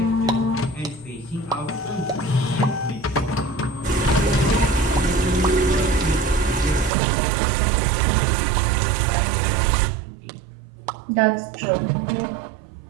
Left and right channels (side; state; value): left; drops out; at 6.9 s